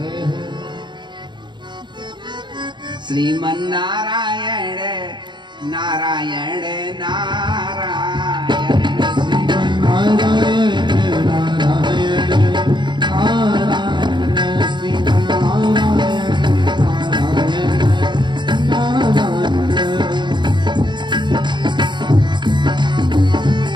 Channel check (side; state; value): left; late; 0.22 ms